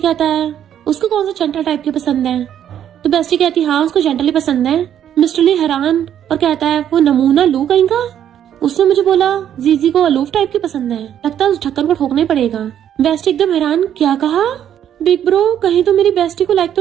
है, उसको कौन सा जेंटल टाइप की पसंद है। तो बेस्टी कहती, हाँ उसको जेंटली पसंद है। मिस्टर ली हैरान और कहता है, वो नमूना लू कहीं का, उसने मुझे बोला जीजी को अलूफ टाइप की पसंद है, लगता है उस ढक्कन को ठोकना ही पड़ेगा। बेस्टी एकदम हैरान, क्या कहा। बिग ब्रो कहीं तो मेरी बेस्टी को लाइक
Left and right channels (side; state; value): left; quieter; 10.0 dB